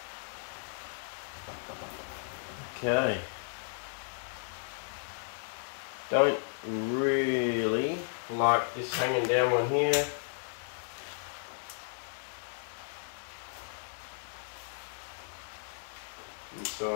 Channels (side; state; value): right; silent; digital silence